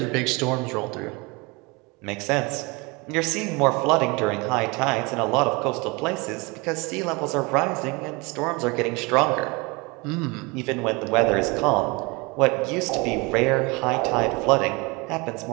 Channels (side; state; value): left; quieter; 27.0 dB